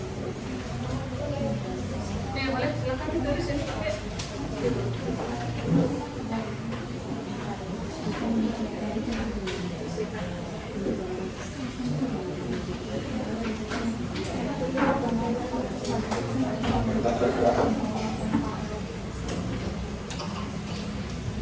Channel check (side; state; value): both; identical; correlation 1.00